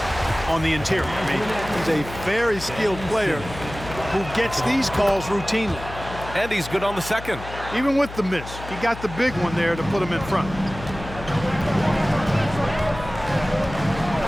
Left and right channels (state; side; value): noise; left; hum, 12 dB below the sound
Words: on the interior. I mean, he's a very skilled player who gets these calls routinely. And he's good on the second. Even with the miss, he got the big one there to put him in front.